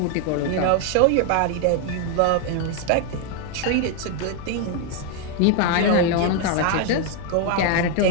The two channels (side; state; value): both; different; correlation 0.01